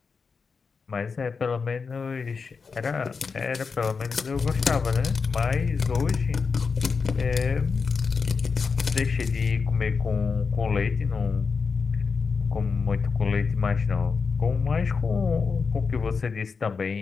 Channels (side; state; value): right; quieter; 5.1 dB